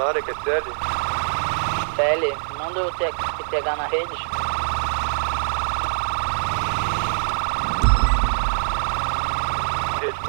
que é CL. CL, manda o QTH na rede. Rede,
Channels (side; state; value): left; silent; digital silence